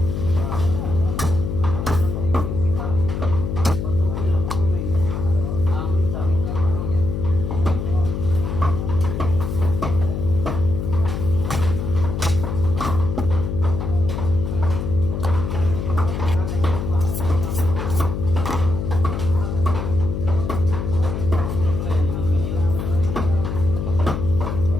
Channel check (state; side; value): noise; left; hum, 3 dB below the sound